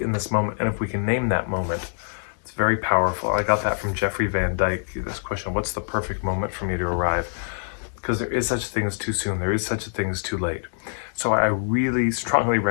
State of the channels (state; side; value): silent; right; 62 dB below the other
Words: in this moment, and if we can name that moment, it's very powerful. I got that from Jeffrey Van Dyke, this question, what's the perfect moment for me to arrive? Because there is such a thing as too soon. There is such a thing as too late. So I really strongly